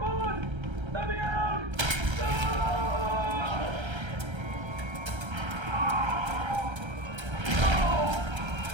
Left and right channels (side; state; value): left; late; 1.3 ms